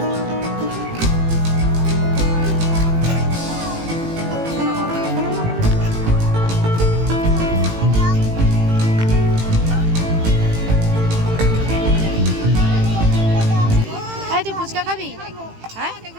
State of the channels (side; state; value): left; late; 18 ms